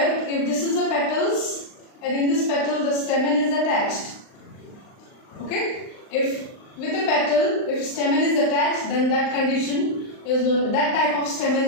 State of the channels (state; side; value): late; right; 39 ms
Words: if this is a petals and in this petal the stamen is attached. Okay, if with a petal, if stamen is attached, then that condition is known, that type of stamen